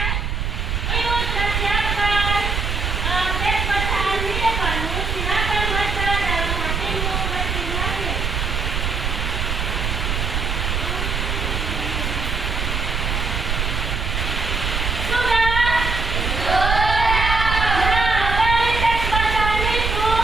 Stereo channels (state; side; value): noise; right; rumble, 1 dB below the sound